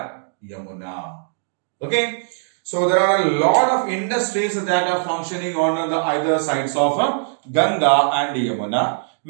Yamuna. Okay. So there are a lot of industries that are functioning on the either sides of Ganga and Yamuna.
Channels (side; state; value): left; silent; digital silence